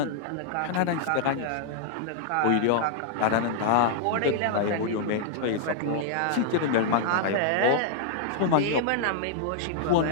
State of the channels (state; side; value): different; both; correlation -0.01